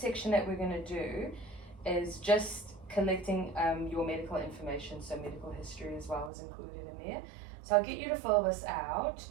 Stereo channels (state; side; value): drops out; left; at 6.3 s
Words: section that we're going to do is just collecting your medical information, so medical history as well is included in there. So I'll get you to fill this out,